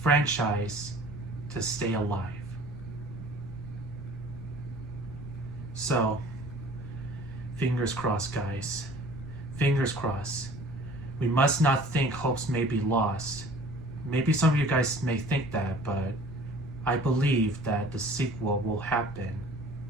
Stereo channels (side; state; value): right; noise; rumble, 17 dB below the sound